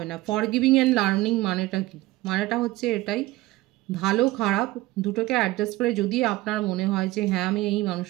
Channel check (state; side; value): quieter; left; 18.6 dB